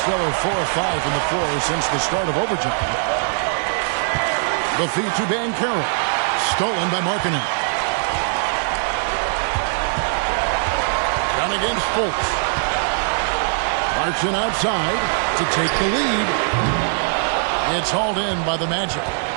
4 of 5 from the floor since the start of overtime. The feed to Banchero. Stolen by Markkanen. Down against Fultz. Clarkson outside to take the lead. It's hauled in by the Magic.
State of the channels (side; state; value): left; silent; digital silence